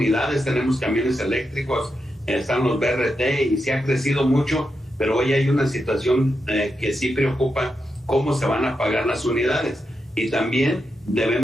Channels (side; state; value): both; normal; correlation 0.86